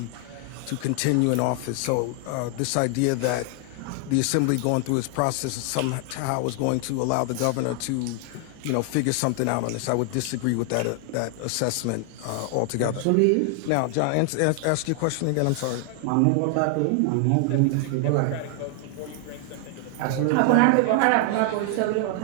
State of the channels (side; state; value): both; different; correlation 0.00